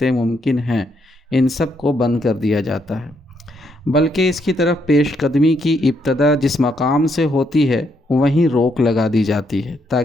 ممکن ہیں ان سب کو بند کر دیا جاتا ہے، بلکہ اس کی طرف پیش قدمی کی ابتدا جس مقام سے ہوتی ہے وہیں روک لگا دی جاتی ہے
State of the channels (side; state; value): both; normal; correlation 0.75